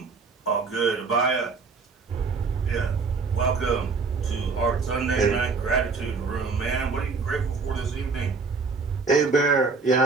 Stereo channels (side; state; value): left; quieter; 4.6 dB